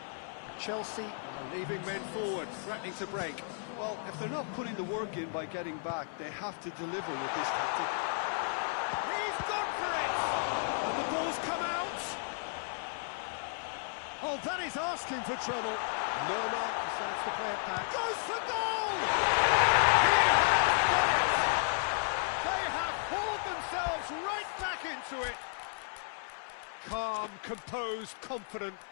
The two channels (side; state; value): right; silent; 56 dB below the other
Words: Chelsea are leaving men forward, threatening to break. Well, if they're not putting the work in by getting back, they have to deliver with this tactic. He's gone for it! And the ball's come out! Oh, that is asking for trouble. Lerma decides to play it back. Goes for goal! He has got it! They have hauled themselves right back into it. Calm, composed, confident.